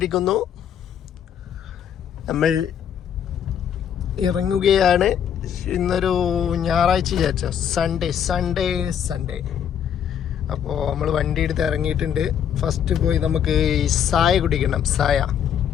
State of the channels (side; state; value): right; quieter; 8.9 dB